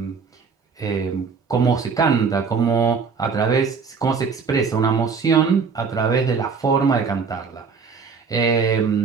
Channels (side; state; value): left; quieter; 5.5 dB